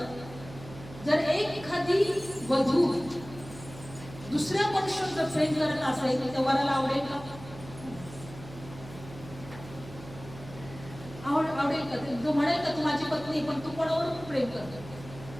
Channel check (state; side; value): noise; right; hum, 15 dB below the sound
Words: जर एखादी वधू दुसऱ्या मनुष्यावर जर प्रेम करत असेल तर त्या वराला आवडेल का? आवडेल का? तो म्हणेल का तू माझी पत्नी, पण तू कोणावर प्रेम करतो?